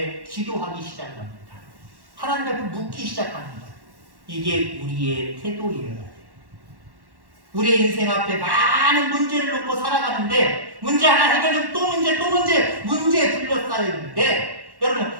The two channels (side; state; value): left; late; 1.1 ms